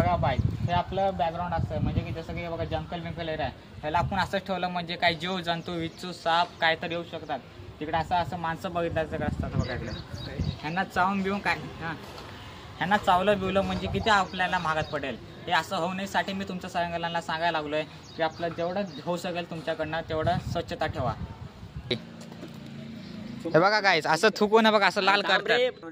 बाय, हे आपलं बॅकग्राऊंड असतं, म्हणजे की जसं की बघा जंगल बिंकल एरिया आहे, ह्याला आपण असंच ठेवलं म्हणजे काही जीव जंतू विच्छू साप काय तर येऊ शकतात तिकडे। असं माणसं बघितलं सगळं असतात बघा इकडे, ह्यांना चावून बिवून काय ह्यांना चावलं बिवलं म्हणजे किती आपल्याला महागात पडेल। हे असं होऊ नयेसाठी मी तुमच्या सगळ्यांना सांगायला लागलोय की आपलं जेवढं होऊ शकेल तुमच्याकडनं तेवढं स्वच्छता ठेवा। हे बघा गाईस, असं थुकून बघा असं लाल करतात।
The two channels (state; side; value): identical; both; correlation 1.00